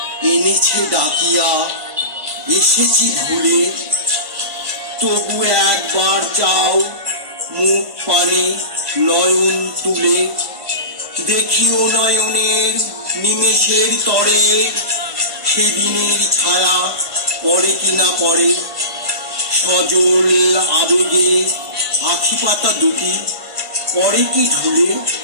এনেছে ডাকিয়া, এসেছি ভুলে তবু একবার চাও মুখ পানে নয়ন তুলে, দেখিও নয়নের নিমেষের তরে সেদিনের ছায়া পড়ে কিনা পড়ে। সজল আবেগে আখি পাতা দুটি পরে কি ঝুলে,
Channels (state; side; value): late; left; 1.5 ms